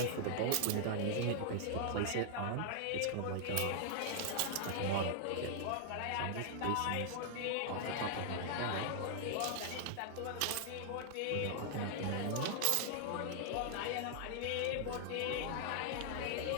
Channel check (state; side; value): different; both; correlation -0.01